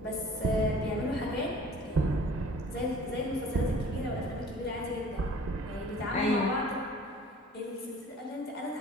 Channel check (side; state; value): both; normal; correlation 0.48